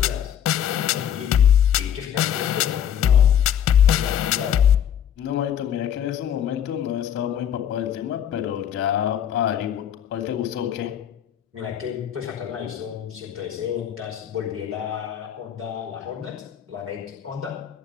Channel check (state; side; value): quieter; right; 9.6 dB